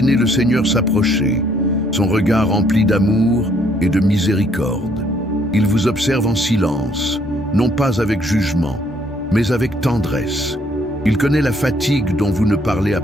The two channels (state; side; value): normal; both; correlation 0.66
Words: le Seigneur s'approcher, son regard rempli d'amour et de miséricorde. Il vous observe en silence, non pas avec jugement, mais avec tendresse. Il connaît la fatigue dont vous ne parlez à